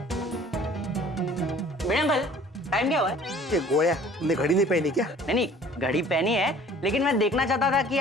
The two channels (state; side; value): normal; both; correlation 0.51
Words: Meera uncle, time क्या हुआ है? ये गोया, तुमने घड़ी नहीं पहनी क्या? नहीं, घड़ी पहनी है, लेकिन मैं देखना चाहता था कि